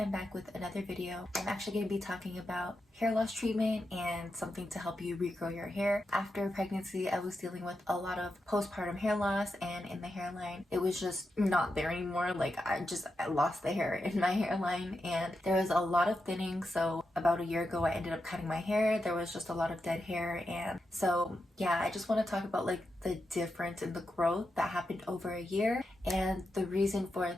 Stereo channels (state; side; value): normal; both; correlation 0.87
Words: back with another video. I'm actually going to be talking about hair loss treatment and something to help you regrow your hair. After pregnancy, I was dealing with a lot of postpartum hair loss, and in the hairline it was just not there anymore. Like I lost the hair in my hairline and there was a lot of thinning. So about a year ago I ended up cutting my hair. There was just a lot of dead hair, and so yeah, I just want to talk about like the difference in the growth that happened over a year. And the reason for